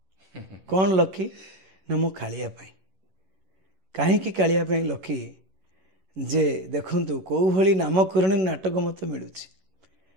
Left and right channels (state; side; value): late; left; 11 ms